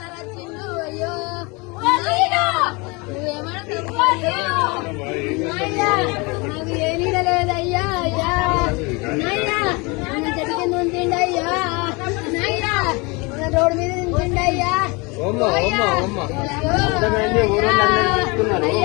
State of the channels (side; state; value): right; quieter; 27.5 dB